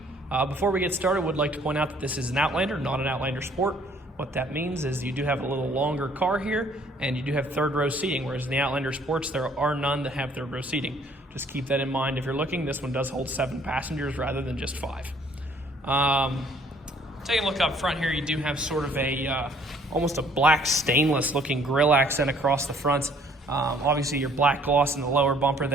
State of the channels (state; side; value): normal; both; correlation 0.60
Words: Before we get started, I would like to point out that this is an Outlander, not an Outlander Sport. What that means is you do have a little longer car here, and you do have third row seating, whereas in the Outlander Sports, there are none that have third row seating. Just keep that in mind if you're looking. This one does hold 7 passengers rather than just 5. Taking a look up front here, you do have sort of a almost a black stainless looking grille accent across the front. Obviously your black gloss in the lower bumper